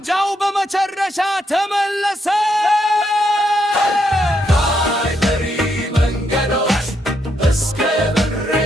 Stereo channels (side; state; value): both; normal; correlation 0.77